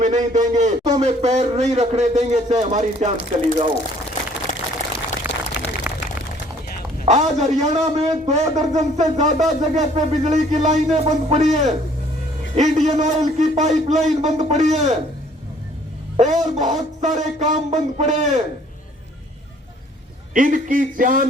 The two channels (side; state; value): both; normal; correlation 0.58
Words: नहीं देंगे। तो में पैर नहीं रखने देंगे, चाहे हमारी जान चली जाओ। आज हरियाणा में 2 दर्जन से ज्यादा जगह पे बिजली की लाइनें बंद पड़ी है, इंडियन ऑयल की पाइपलाइन बंद पड़ी है और बहुत सारे काम बंद पड़े हैं। इनकी